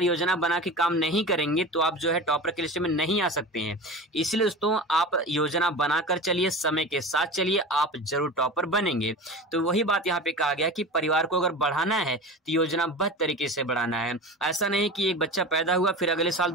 योजना बना के काम नहीं करेंगे तो आप जो है टॉपर की लिस्ट में नहीं आ सकते हैं। इसलिए दोस्तों आप योजना बनाकर चलिए, समय के साथ चलिए, आप जरूर टॉपर बनेंगे। तो वही बात यहाँ पे कहा गया कि परिवार को अगर बढ़ाना है तो योजनाबद्ध तरीके से बढ़ाना है। ऐसा नहीं कि एक बच्चा पैदा हुआ फिर अगले साल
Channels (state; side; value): normal; both; correlation 0.31